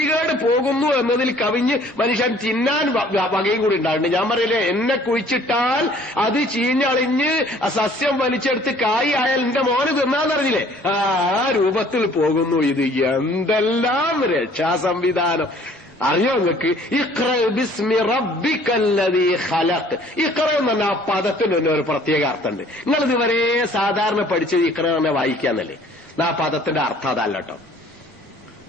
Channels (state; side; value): normal; both; correlation 0.56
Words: പോകുന്നു എന്നതിൽ കവിഞ്ഞ് മനുഷ്യൻ തിന്നാൻ വകയും കൂടി ഉണ്ടാകുന്നുണ്ട്. ഞാൻ പറയില്ലേ, എന്നെ കുഴിച്ചിട്ടാൽ അത് ചീഞ്ഞളിഞ്ഞ് സസ്യം വലിച്ചെടുത്ത് കായ് ആയാൽ എന്റെ മോന് തിന്നാന്നറിഞ്ഞില്ലേ? ആ രൂപത്തിൽ പോകുന്നു ഇത്. എന്തെല്ലാം രക്ഷാ സംവിധാനം അറിയോ നിങ്ങൾക്ക്? ഇഖ്റ ബിസ്മി റബ്ബിക്കല്ലദീ ഖലഖ്. ഇഖ്റ എന്ന് പറഞ്ഞ ആ പദത്തിന് തന്നെ ഒരു പ്രത്യേക അർത്ഥമുണ്ട്. നിങ്ങൾ ഇതുവരെ സാധാരണ പഠിച്ചത് ഇഖ്റ തന്നെ വായിക്കാന്നല്ലേ? ആ പദത്തിന്റെ അർത്ഥം അതല്ല കേട്ടോ.